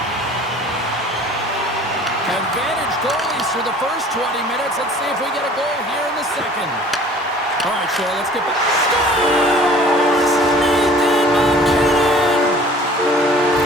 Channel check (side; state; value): both; normal; correlation 0.49